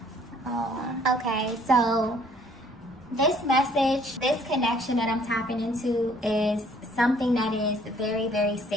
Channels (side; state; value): both; normal; correlation 0.60